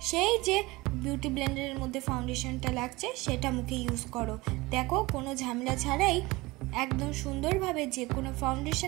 সেই যে বিউটি ব্লেন্ডারের মধ্যে ফাউন্ডেশনটা লাগছে সেটা মুখে ইউজ করো। দেখো কোনো ঝামেলা ছাড়াই একদম সুন্দরভাবে যে কোনো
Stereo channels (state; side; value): quieter; left; 21.7 dB